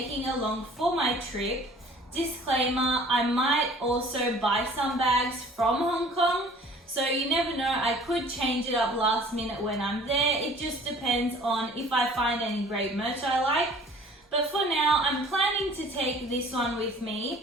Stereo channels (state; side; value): normal; both; correlation 0.50